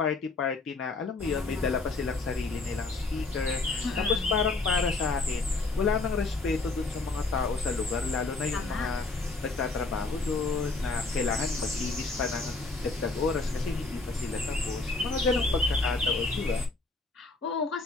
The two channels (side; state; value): right; quieter; 3.5 dB